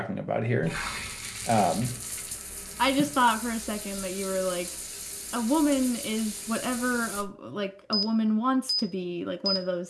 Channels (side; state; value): both; identical; correlation 1.00